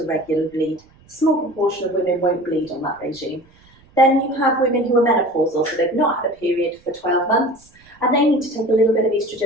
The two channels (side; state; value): right; noise; rumble, 29 dB below the sound